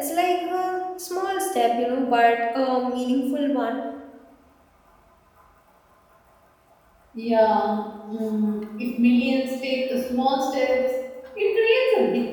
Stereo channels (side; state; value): both; identical; correlation 1.00